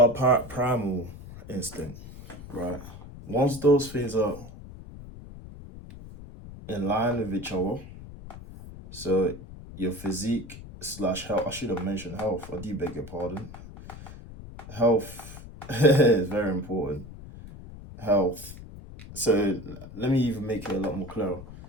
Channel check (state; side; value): noise; left; rumble, 15 dB below the sound